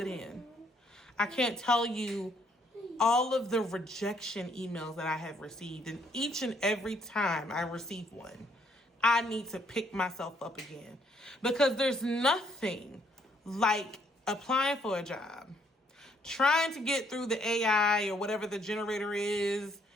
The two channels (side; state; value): both; normal; correlation 0.69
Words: in. I can't tell you all of the rejection emails that I have received. And each and every time I receive one, I need to pick myself up again. Because there's nothing like applying for a job, trying to get through the AI or whatever the generator is,